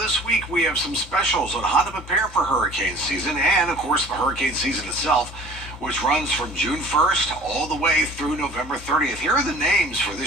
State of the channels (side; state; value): both; normal; correlation 0.47